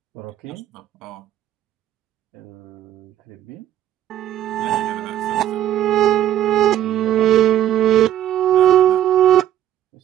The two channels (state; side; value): quieter; left; 11.7 dB